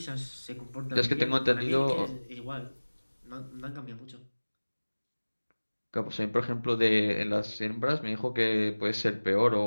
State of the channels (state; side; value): inverted; both; correlation -1.00